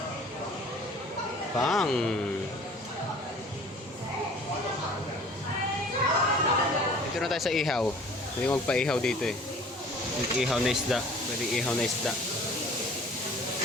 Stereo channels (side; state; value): both; normal; correlation 0.49